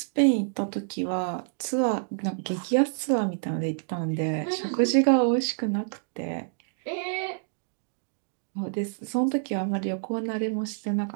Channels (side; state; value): left; silent; digital silence